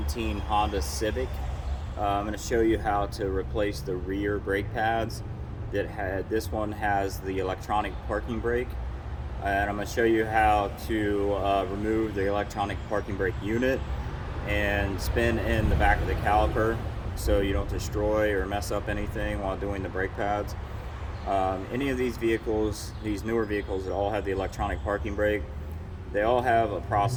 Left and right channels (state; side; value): identical; both; correlation 1.00